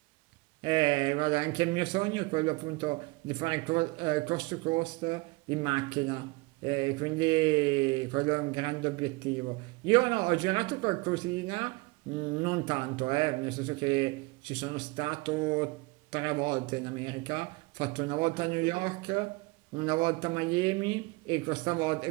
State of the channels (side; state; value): left; quieter; 25.0 dB